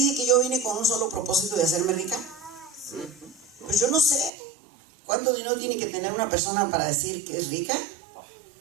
que yo vine con un solo propósito de hacerme rica? Pues yo no sé cuánto dinero tiene que tener una persona para decir que es rica,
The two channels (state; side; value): drops out; left; at 4.3 s